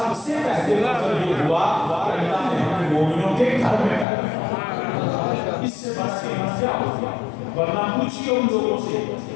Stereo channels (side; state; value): right; drops out; at 4.0 s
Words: سے پہلے فضل یہ ہوا کہ اللہ نے ہمیں مومنوں کے گھر میں پیدا، اس سے بڑا قیمت کیا ہوگا؟ ورنہ پوچھئے ان لوگوں سے